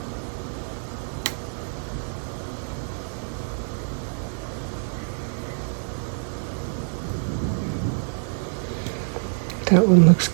That one looks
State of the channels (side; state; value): left; silent; 61 dB below the other